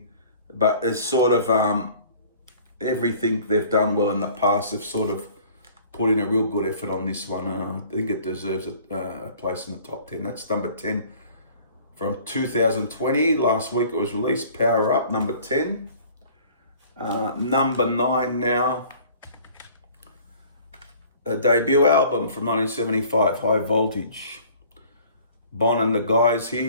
but it's sort of everything they've done well in the past. They've sort of put in a real good effort on this one. I think it deserves a place in the top 10. That's number 10 from 2020. Last week it was released, Power Up, number 10. Number 9 now, a debut album from 1975, High Voltage. Bon and the guys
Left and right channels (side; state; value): both; inverted; correlation -0.51